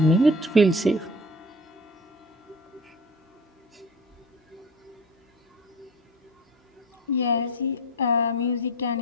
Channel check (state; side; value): normal; both; correlation 0.38